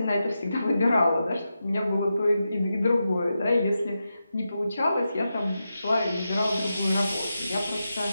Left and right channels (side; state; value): both; inverted; correlation -0.89